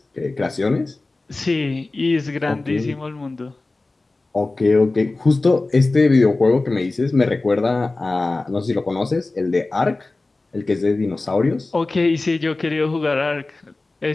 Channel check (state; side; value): quieter; right; 3.2 dB